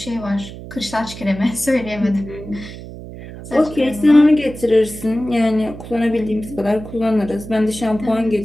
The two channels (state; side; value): noise; right; hum, 13 dB below the sound